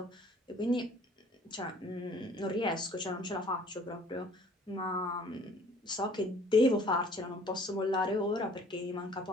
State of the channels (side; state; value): both; normal; correlation 0.54